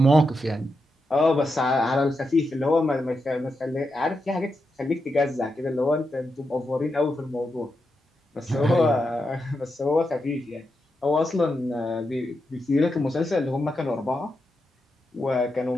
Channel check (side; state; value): both; normal; correlation 0.86